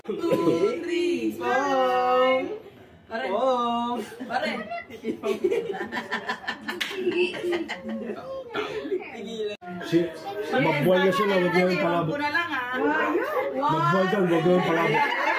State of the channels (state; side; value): identical; both; correlation 1.00